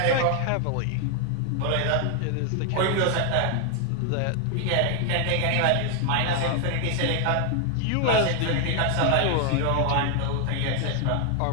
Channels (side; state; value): both; different; correlation 0.00